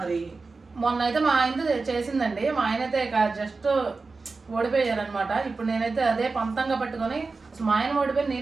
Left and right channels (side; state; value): left; quieter; 4.0 dB